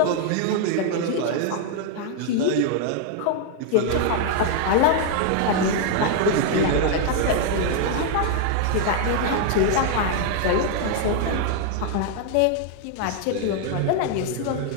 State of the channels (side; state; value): both; different; correlation 0.00